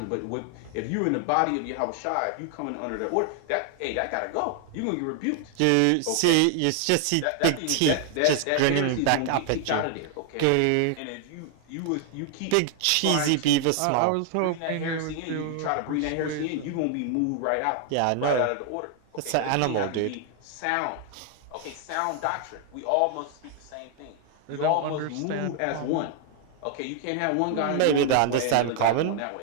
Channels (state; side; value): different; both; correlation 0.00